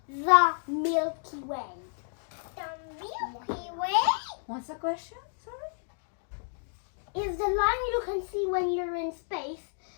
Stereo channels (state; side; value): silent; right; digital silence